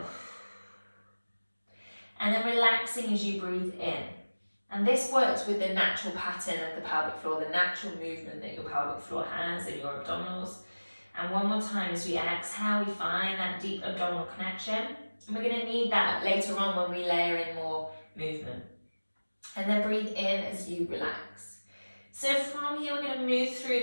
And then relaxing as you breathe in. And this works with the natural pattern of the pelvic floor, the natural movement that your pelvic floor has and your abdominals. And one more time as we exhale, we find that deep abdominal connection. And we're going to need that later on when we layer in more movement. And then breathe in as you relax. So from here, we're going to move through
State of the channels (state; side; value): inverted; both; correlation -1.00